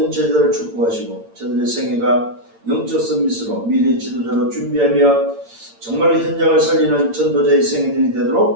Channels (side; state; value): left; late; 8.8 ms